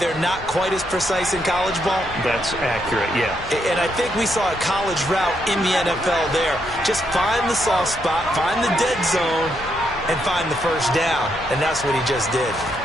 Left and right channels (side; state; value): both; normal; correlation 0.78